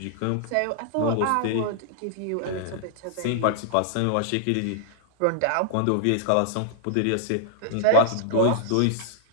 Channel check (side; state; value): both; different; correlation -0.01